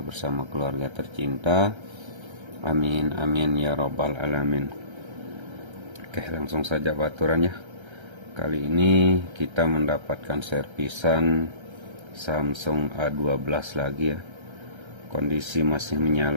bersama keluarga tercinta. Amin amin ya robbal alamin. Oke, langsung saja baturan ya. Kali ini kita mendapatkan servisan Samsung A12 lagi ya. Kondisi masih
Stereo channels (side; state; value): left; late; 1.3 ms